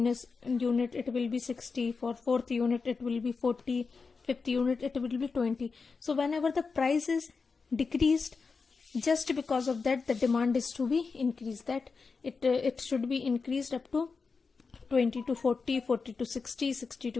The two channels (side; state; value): right; quieter; 4.8 dB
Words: it will be 60, for fourth unit it will be 40, fifth unit it will be 20. So whenever the price is decreased, just because of that the demand is to be increased, that it should be increased up to 20 to 40, 40 to 60, 60